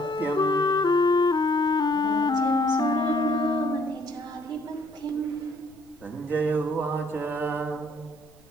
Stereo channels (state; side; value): noise; left; rumble, 29 dB below the sound